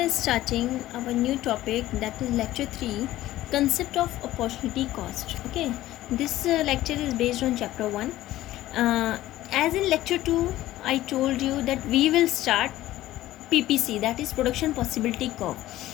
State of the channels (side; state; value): right; quieter; 15.2 dB